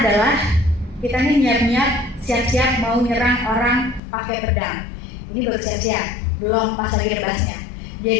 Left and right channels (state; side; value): drops out; right; at 4.0 s